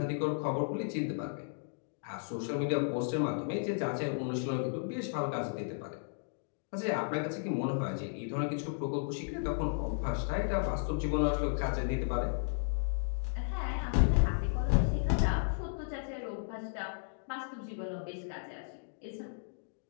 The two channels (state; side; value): silent; right; digital silence